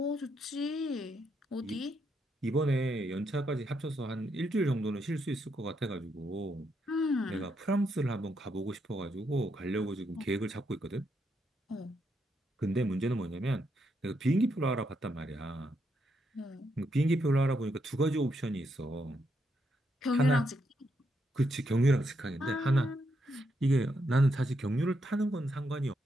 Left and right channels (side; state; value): both; normal; correlation 0.79